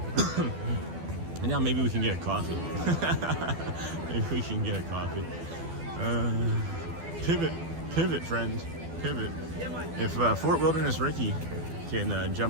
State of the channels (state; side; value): late; left; 12 ms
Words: And now maybe we can get a coffee. Maybe we can get a coffee. Pivot, friends, pivot. If Fort Wilderness Ricky can